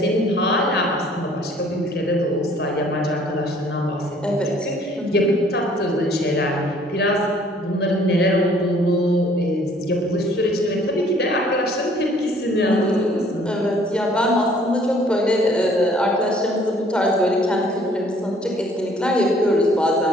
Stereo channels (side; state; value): both; normal; correlation 0.58